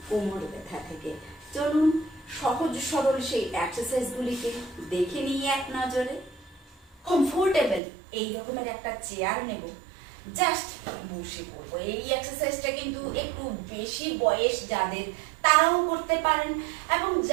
কোমর ব্যথা থেকে। চলুন সহজ সরল সেই এক্সারসাইজগুলিকে দেখে নিয়ে এক নজরে। কমফোর্টেবল এই রকমের একটা চেয়ার নেব, জাস্ট বসে পড়বো। এই এক্সারসাইজটা কিন্তু একটু বেশি বয়স যাদের তারাও করতে পারেন, এবং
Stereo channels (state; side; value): drops out; left; at 7.8 s